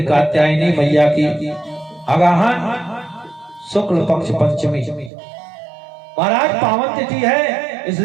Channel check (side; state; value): left; drops out; at 5.1 s